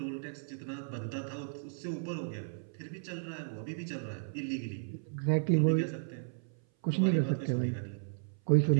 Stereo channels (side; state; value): left; silent; 55 dB below the other